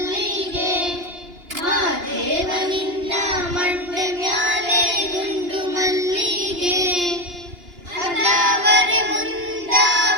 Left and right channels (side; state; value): left; late; 2.9 ms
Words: ಮಾದೇವ ನಿನ್ನ ಮಂಡೆ ಮ್ಯಾಲೆ ದುಂಡು ಮಲ್ಲಿಗೆ ಅದಾವರೆ